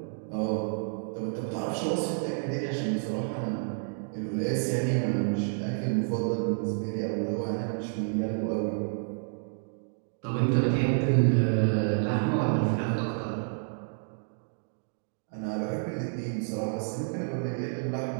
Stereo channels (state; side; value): silent; left; digital silence